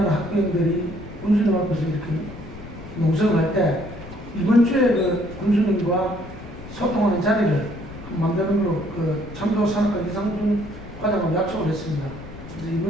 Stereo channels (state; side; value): noise; left; rumble, 16 dB below the sound